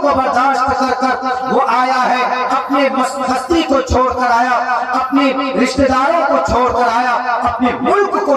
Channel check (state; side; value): identical; both; correlation 1.00